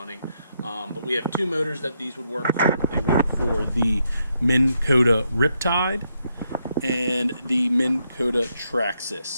But we have two motors that these would work for. They work for the Minn Kota Riptide and the Minn Kota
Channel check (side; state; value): both; inverted; correlation -0.79